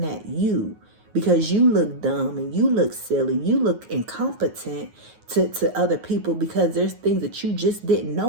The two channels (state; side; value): late; left; 9.5 ms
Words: at you because you look dumb and you look silly. You look incompetent to other people because there's things that you just didn't